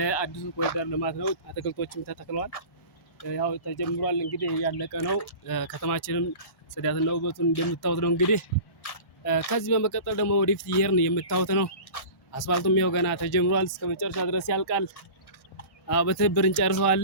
አዲሱ ኮሪደር ልማት ነው። አትክልቶችም ተተክለዋል። ያው ተጀምሯል። እንግዲህ ያለቀ ነው። ከተማችንም ጽዳትና ውበቱን እንደምታዩት ነው። እንግዲህ ከዚህ በመቀጠል ደግሞ ወደፊት እየሄድን የምታዩት ነው። አስፋልቱም ያው ገና ተጀምሯል። እስከ መጨረሻ ድረስ ያልቃል። በትብብር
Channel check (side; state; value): right; late; 1.1 ms